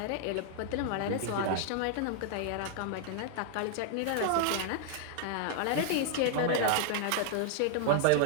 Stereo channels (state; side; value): different; both; correlation -0.01